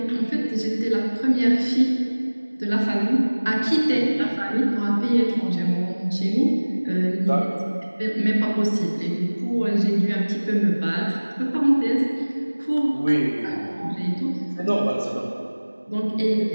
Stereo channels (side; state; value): both; inverted; correlation -1.00